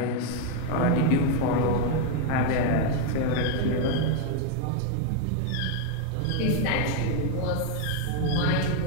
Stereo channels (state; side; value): different; both; correlation 0.01